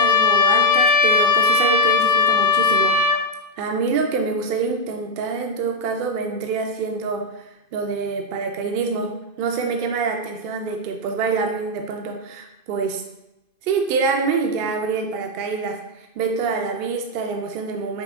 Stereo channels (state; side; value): late; left; 2.5 ms